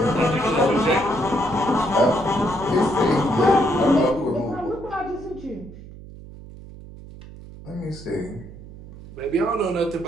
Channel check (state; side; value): noise; right; hum, 16 dB below the sound